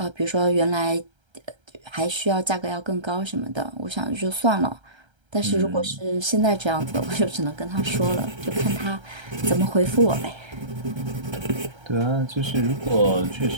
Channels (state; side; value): late; left; 1.3 ms